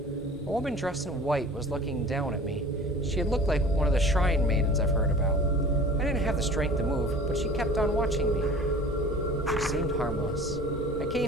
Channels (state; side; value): normal; both; correlation 0.43